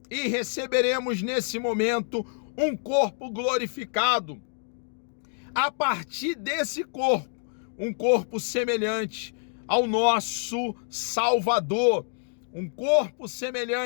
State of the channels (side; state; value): right; silent; digital silence